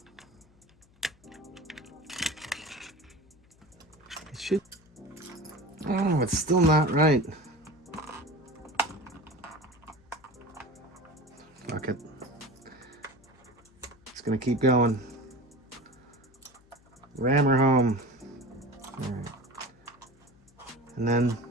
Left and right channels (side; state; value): left; noise; hum, 30 dB below the sound